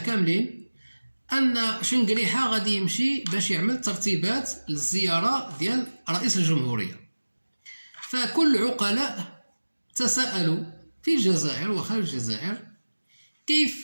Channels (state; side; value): inverted; both; correlation -1.00